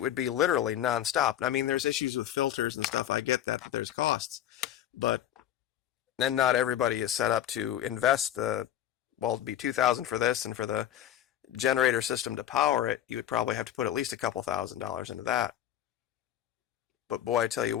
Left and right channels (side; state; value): right; quieter; 11.5 dB